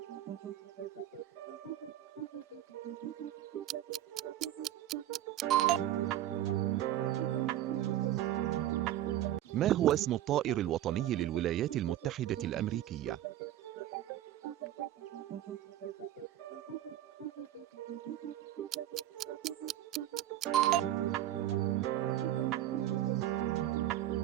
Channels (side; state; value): left; quieter; 12.7 dB